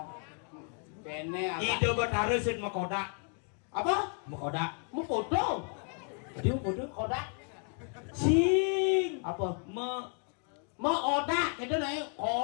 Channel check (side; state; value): right; quieter; 39.3 dB